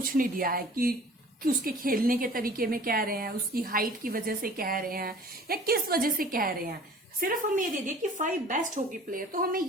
नहीं दिया है कि उसके खेलने के तरीके में कह रहे हैं, उसकी हाइट की वजह से कह रहे हैं, या किस वजह से कह रहे हैं। सिर्फ हमें ये दे दिए कि 5 बेस्ट हॉकी प्लेयर, तो हमें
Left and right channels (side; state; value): both; normal; correlation 0.47